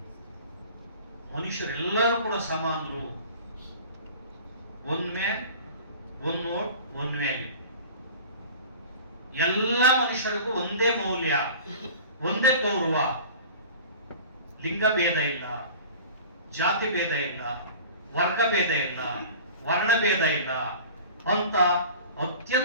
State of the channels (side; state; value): both; inverted; correlation -0.41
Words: ಮನುಷ್ಯರೆಲ್ಲರೂ ಕೂಡ ಸಮಾನರು. One man one vote one value. ಎಲ್ಲ ಮನುಷ್ಯರಿಗೂ ಒಂದೇ ಮೌಲ್ಯ, ಒಂದೇ ಗೌರವ. ಲಿಂಗ ಭೇದ ಇಲ್ಲ, ಜಾತಿ ಭೇದ ಇಲ್ಲ, ವರ್ಗ ಭೇದ ಇಲ್ಲ, ವರ್ಣ ಭೇದ ಇಲ್ಲ ಅಂತ